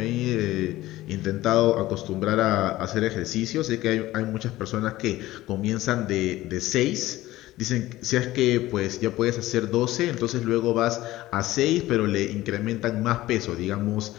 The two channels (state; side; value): quieter; right; 16.6 dB